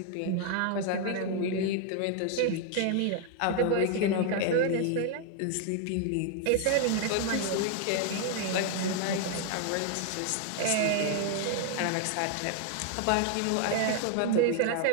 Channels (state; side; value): different; both; correlation 0.00